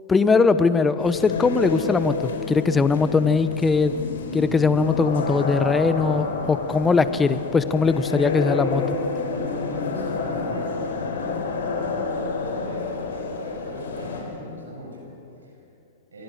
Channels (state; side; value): quieter; right; 4.1 dB